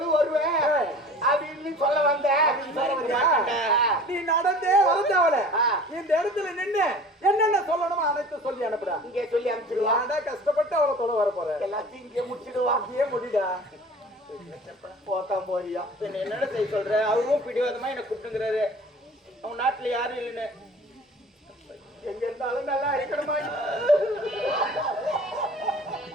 வருவேன் அப்படின்னு சொல்ல வந்தேன். நீ நடந்தே வரதவல இந்த இடத்துல நின்னு என்னென்ன சொல்லணுமோ அனைத்து சொல்லி அனுப்புடா. இங்கே சொல்லி அனுப்பிச்சிடுவா. ஏன்டா கஷ்டப்பட்டு அவரை தொலை வர போற? எல்லாத்தையும் இங்கே முடிச்சிடுவா. அங்கேயே முடிடா. போக்காம போறியா? என்னடா செய்ய சொல்ற? அவரும் பிடிவாதமா என்ன கூப்பிட்டுங்கிறாரு. அவங்க நாட்டுல யாரும் இல்லைன்னு. எங்க இருந்தாலும் நல்லா இருக்கணுமா?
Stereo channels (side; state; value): both; normal; correlation 0.44